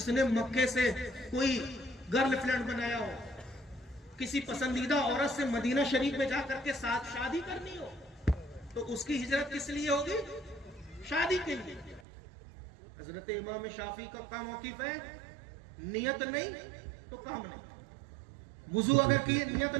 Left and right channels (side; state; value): left; drops out; at 12.0 s